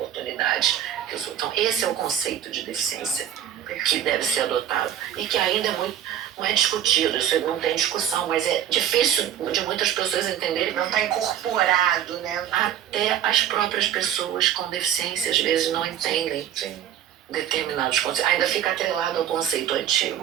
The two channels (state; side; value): quieter; left; 10.3 dB